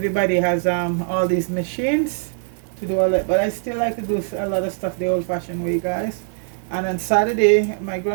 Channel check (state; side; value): silent; left; digital silence